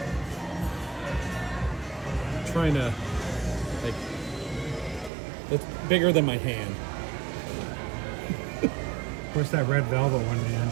I'm trying to, like, it's bigger than my hand. Where's that red velvet one, man?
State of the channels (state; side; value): drops out; left; at 5.1 s